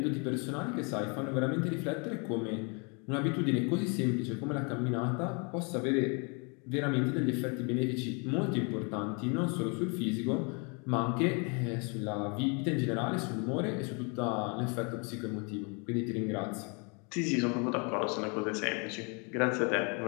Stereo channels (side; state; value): right; quieter; 34.0 dB